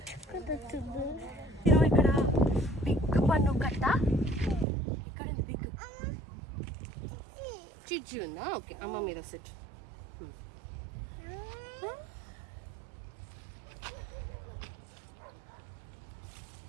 ఇక్కడ బిగ్ పన్ను కట్ట. ఇక్కడ బిగ్ చిచ్చు ఉందా? ఓకే, అమ్మ మీద సెట్.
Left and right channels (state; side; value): drops out; left; at 4.7 s